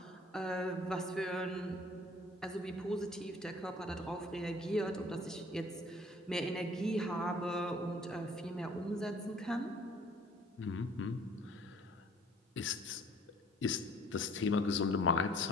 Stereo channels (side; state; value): both; normal; correlation 0.54